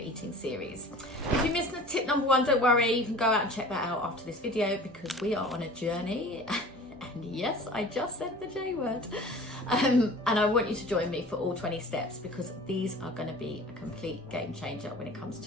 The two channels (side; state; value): both; normal; correlation 0.42